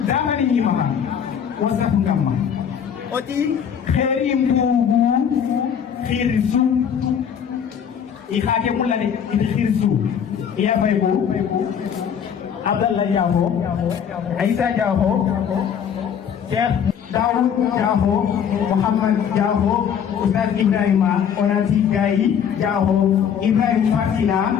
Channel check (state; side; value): quieter; right; 8.0 dB